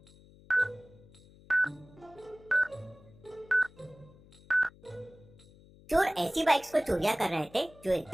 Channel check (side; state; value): left; noise; hum, 24 dB below the sound